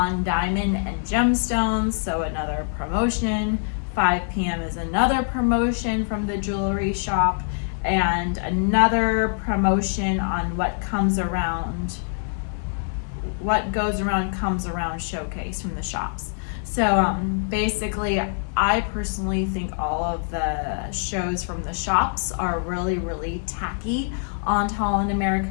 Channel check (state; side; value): silent; right; 61 dB below the other